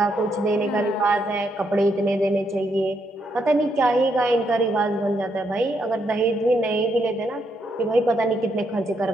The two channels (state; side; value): normal; both; correlation 0.77